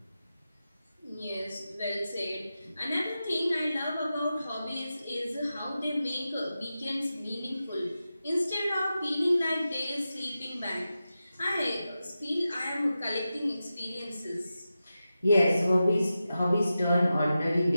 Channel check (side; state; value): both; inverted; correlation -0.92